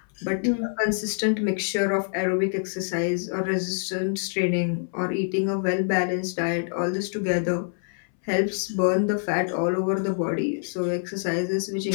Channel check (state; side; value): silent; right; 60 dB below the other